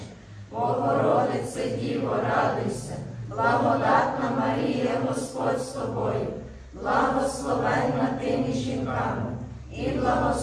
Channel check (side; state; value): both; identical; correlation 1.00